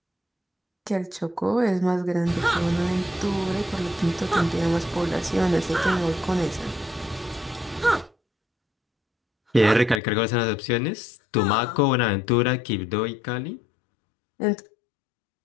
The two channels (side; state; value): right; drops out; at 10.0 s